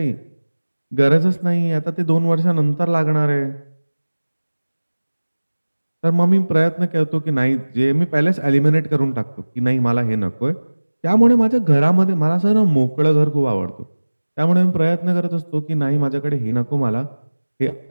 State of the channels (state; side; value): inverted; both; correlation -1.00